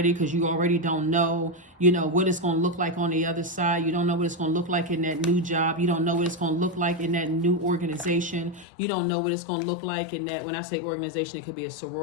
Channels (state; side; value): drops out; right; at 8.7 s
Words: because you already don't know, what it's going to look like on the other side. You don't know what it's going to look like in that new job. You don't know what it's going to look like in that new organization. You don't know what it's going to look like in that, when I say organization, it could be a